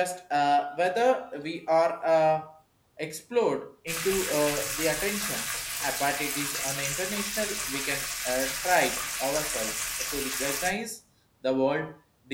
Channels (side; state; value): both; identical; correlation 1.00